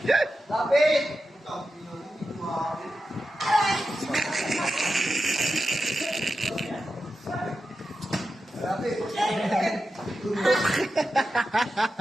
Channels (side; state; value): both; normal; correlation 0.90